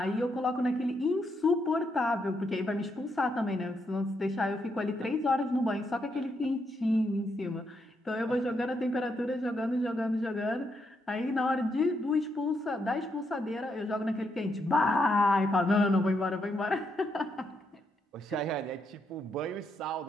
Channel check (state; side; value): normal; both; correlation 0.79